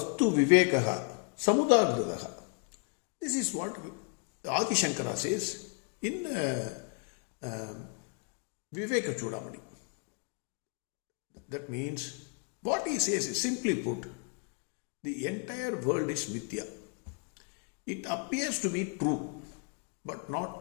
Vivekaha Samudagradaha. This is what Adi Shankara says in Viveka Chudamani. That means what he says is simply put, the entire world is Mithya. It appears to be true, but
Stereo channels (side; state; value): right; quieter; 37.3 dB